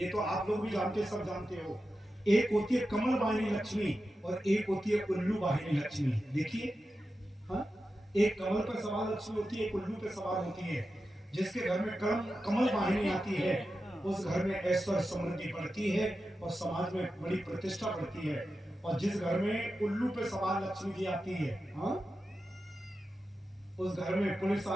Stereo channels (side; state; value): both; normal; correlation 0.91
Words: तो आप लोग भी जानते, सब जानते हो। एक होती है कमल वाहिनी लक्ष्मी, और एक होती है उल्लू वाहिनी लक्ष्मी। देखिए, हाँ, एक कमल पर सवार लक्ष्मी होती है, एक उल्लू पे सवार होती है। जिसके घर में कमल वाहिनी आती है, उस घर में ऐश्वर्य समृद्धि बढ़ती है और समाज में बड़ी प्रतिष्ठा बढ़ती है। और जिस घर में उल्लू पे सवार लक्ष्मी जी आती है, हाँ, उस घर में पुलिस